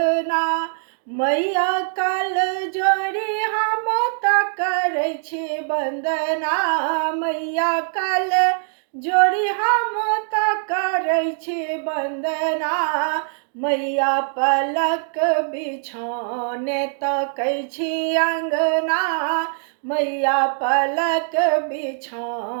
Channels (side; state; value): left; silent; digital silence